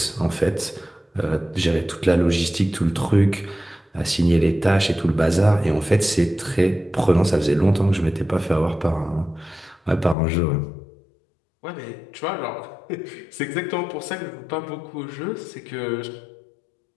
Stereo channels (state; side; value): drops out; right; at 10.2 s